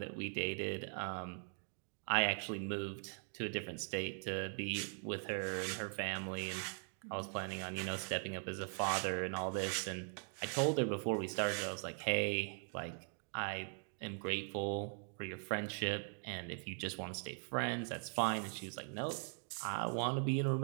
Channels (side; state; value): left; silent; 50 dB below the other